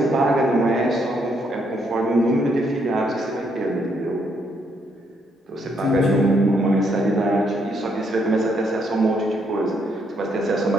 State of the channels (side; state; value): both; normal; correlation 0.74